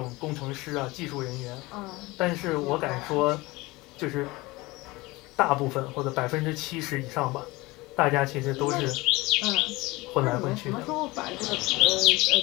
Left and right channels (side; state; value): right; quieter; 21.7 dB